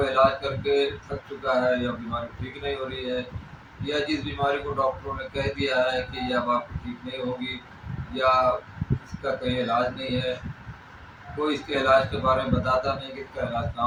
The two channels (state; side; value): identical; both; correlation 1.00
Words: इलाज करके थक चुका है, या बीमारी ठीक नहीं हो रही है, या जिस बीमारी को डॉक्टरों ने कह दिया है कि ये अब आपकी ठीक नहीं होगी, या इसका कहीं इलाज नहीं है, कोई इसके इलाज के बारे में बताता नहीं कि इसका इलाज